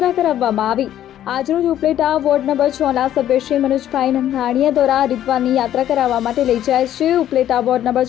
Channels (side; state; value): right; quieter; 11.6 dB